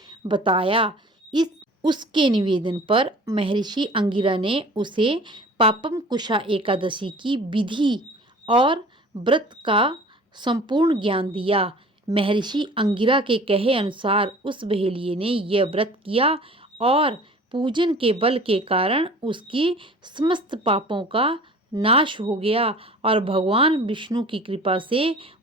बताया। उसके निवेदन पर महर्षि अंगिरा ने उसे पापम कुशा एकादशी की विधि और व्रत का संपूर्ण ज्ञान दिया। महर्षि अंगिरा के कहे अनुसार उस बहेलिये ने यह व्रत किया और पूजन के बल के कारण उसकी समस्त पापों का नाश हो गया और भगवान विष्णु की कृपा से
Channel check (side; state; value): both; normal; correlation 0.45